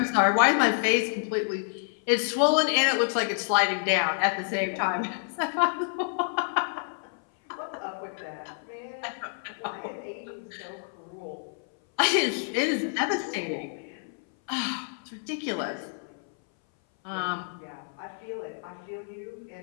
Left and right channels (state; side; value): silent; right; 58 dB below the other